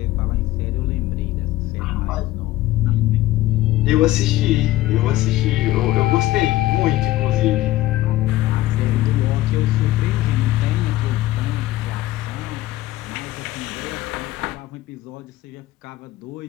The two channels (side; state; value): right; quieter; 16.2 dB